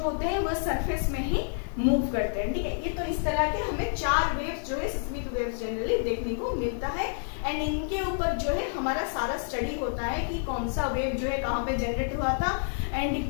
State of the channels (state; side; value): silent; right; digital silence